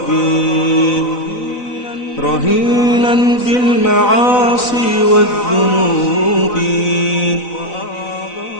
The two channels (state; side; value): late; right; 4.0 ms